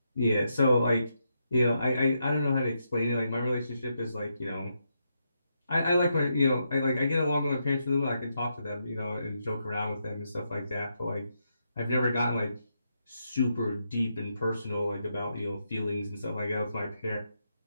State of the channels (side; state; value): both; inverted; correlation -0.82